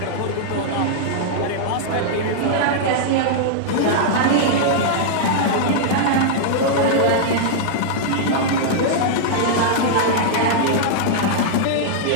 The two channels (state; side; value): different; both; correlation -0.02